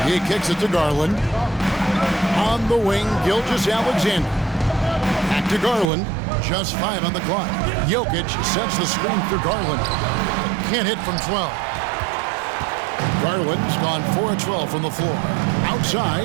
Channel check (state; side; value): drops out; left; at 5.9 s